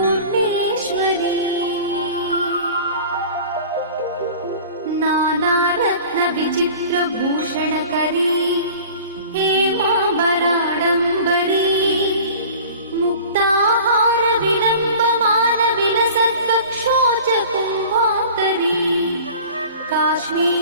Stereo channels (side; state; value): both; inverted; correlation -0.43